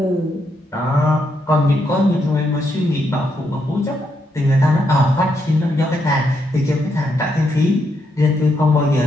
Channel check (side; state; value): both; normal; correlation 0.79